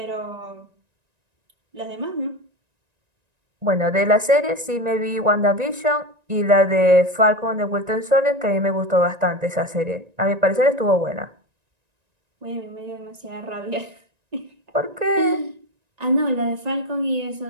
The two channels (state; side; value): late; left; 1.9 ms